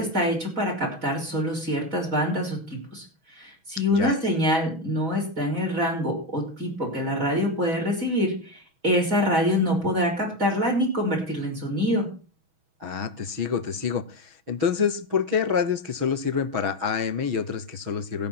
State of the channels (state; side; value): late; left; 6.2 ms